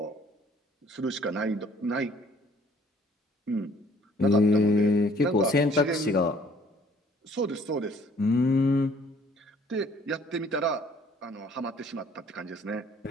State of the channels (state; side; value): normal; both; correlation 0.59